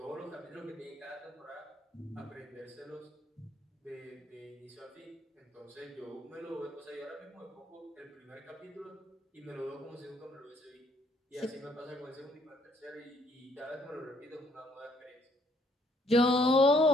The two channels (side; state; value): both; normal; correlation 0.66